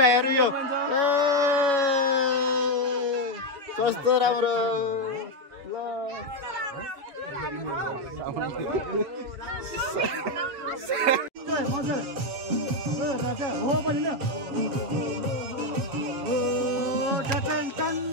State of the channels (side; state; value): left; late; 7.1 ms